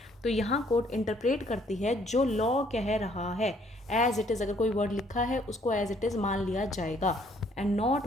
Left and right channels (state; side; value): normal; both; correlation 0.64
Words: तो यहाँ कोर्ट इंटरप्रेट करती है जो लॉ कह रहा है एज इट इज़। अगर कोई वर्ड लिखा है उसको एज इट इज़ मान लिया जाएगा and not